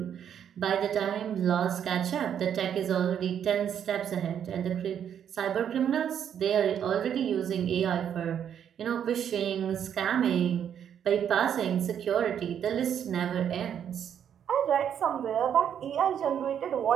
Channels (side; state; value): left; quieter; 8.9 dB